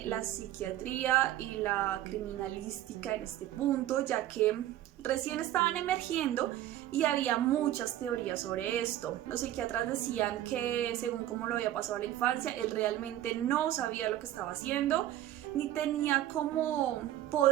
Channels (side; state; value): left; quieter; 13.3 dB